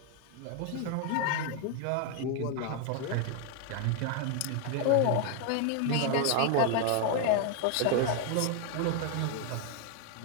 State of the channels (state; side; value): different; both; correlation 0.01